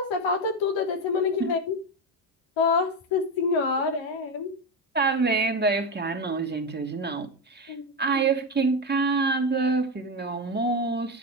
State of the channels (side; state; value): both; normal; correlation 0.13